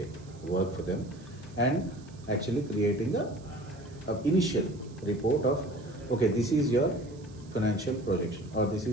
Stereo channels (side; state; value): right; noise; hiss, 26 dB below the sound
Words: work for them, and actually creating a initial report of, okay, this is your financial projection, or this